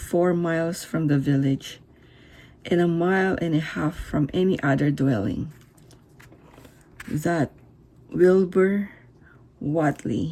miles from the village, and 1.5 miles from any other dwelling, that Wilbur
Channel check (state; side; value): identical; both; correlation 1.00